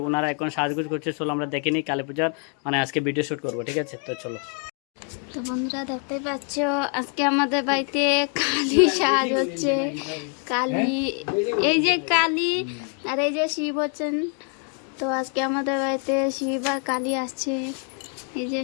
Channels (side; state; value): right; quieter; 38.9 dB